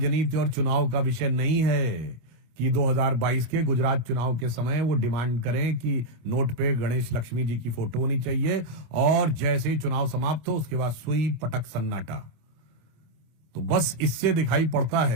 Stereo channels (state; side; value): late; left; 26 ms